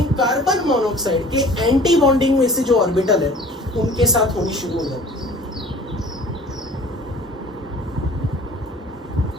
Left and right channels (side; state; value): both; normal; correlation 0.47